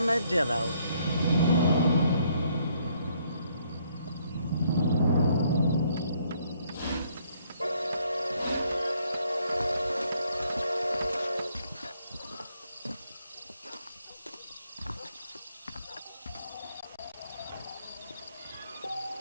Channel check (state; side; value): inverted; both; correlation -0.68